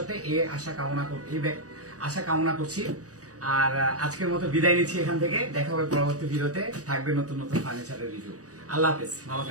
এই আশা কামনা করছি। আর আজকের মতো বিদায় নিচ্ছি এখান থেকে। দেখা হবে পরবর্তী ভিডিওতে, থাকবে নতুন ফার্নিচারের রিভিউ। আল্লাহ হাফেজ, ভালো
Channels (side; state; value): left; late; 0.66 ms